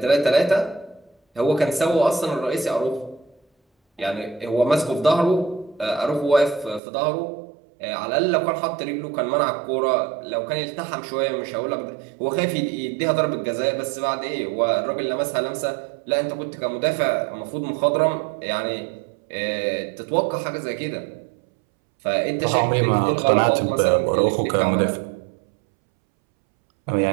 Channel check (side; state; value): left; drops out; at 6.8 s